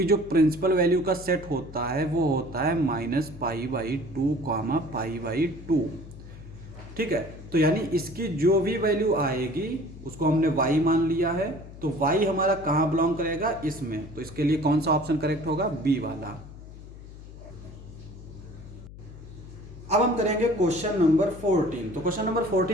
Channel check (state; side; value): noise; left; hum, 16 dB below the sound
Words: जो प्रिंसिपल वैल्यू का सेट होता है वो होता है -π/2, π/2, ठीक है। तो यानी इसकी जो भी वैल्यू आएगी उसको हमने y मान लिया है, तो y हमारा कहाँ बिलोंग करेगा, इसमें। तो इसके लिए कौन सा ऑप्शन करेक्ट होगा, बी वाला। अब हम करेंगे क्वेश्चन नंबर 14। तो क्वेश्चन नंबर